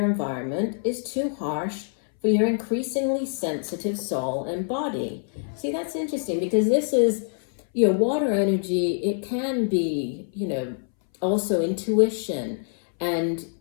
environment is too harsh for your increasingly sensitive soul and body. See, that's interesting, because this is, water energy. It can be, also intuition, and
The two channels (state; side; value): silent; right; 61 dB below the other